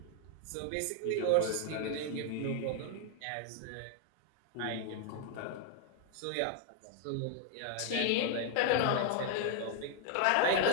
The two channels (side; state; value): both; different; correlation 0.00